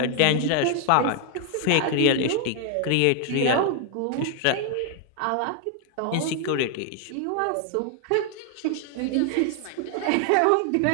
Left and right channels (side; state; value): both; different; correlation 0.00